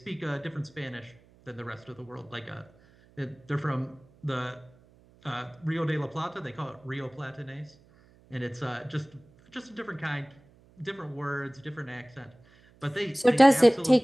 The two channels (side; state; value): right; noise; hum, 28 dB below the sound